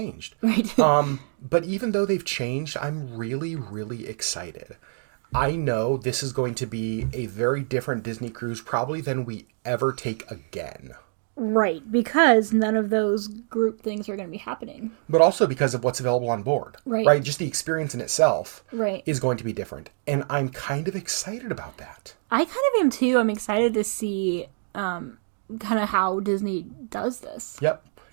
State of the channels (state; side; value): silent; left; digital silence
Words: Right. But even though they've changed, I'm really, really excited. I know this is going to be a very different Disney cruise probably than we ever take again. Right, because none of those group things are going to be happening. But also because of what's available on board. Right. Just the experience in itself right. is going to be different. And I'm kind of excited about that. I kind of am too. I'm excited to see kind of how Disney does this. Yep.